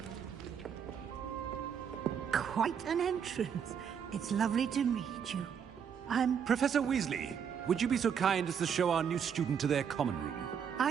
Quite an entrance. It's lovely to meet you. Professor Weasley, would you be so kind as to show our new student to their common room?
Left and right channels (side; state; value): left; quieter; 7.6 dB